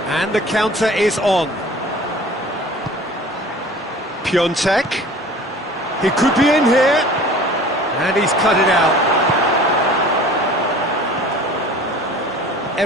And the counter is on. Piontek. He could be in here. And he's cut it out.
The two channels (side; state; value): both; normal; correlation 0.44